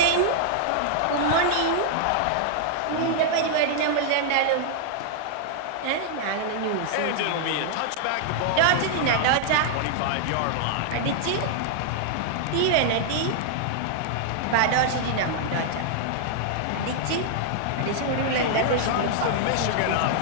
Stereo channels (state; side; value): different; both; correlation -0.01